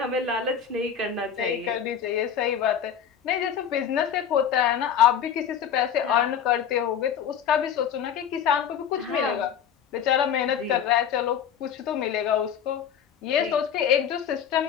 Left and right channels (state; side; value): quieter; right; 8.4 dB